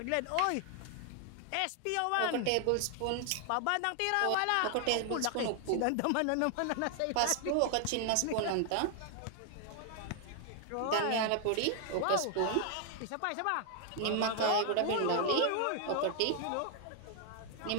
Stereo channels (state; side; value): different; both; correlation 0.00